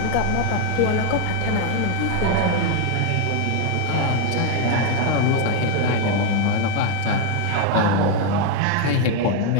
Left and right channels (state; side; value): different; both; correlation 0.01